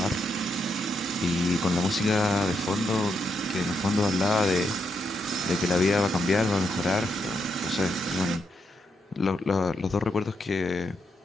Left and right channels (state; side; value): normal; both; correlation 0.80